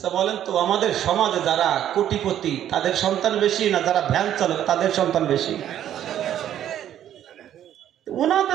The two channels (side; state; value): left; quieter; 11.0 dB